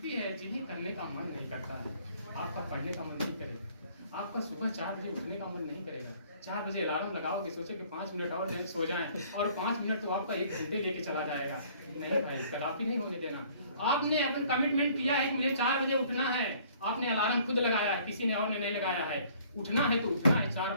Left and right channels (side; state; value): both; inverted; correlation -0.57